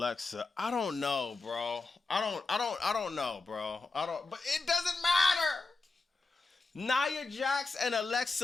I don't know, bro. I don't know, bro. But it doesn't matter. Nia Jax and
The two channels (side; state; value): right; quieter; 3.9 dB